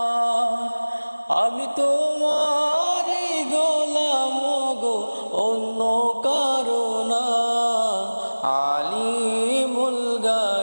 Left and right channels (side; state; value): both; inverted; correlation -1.00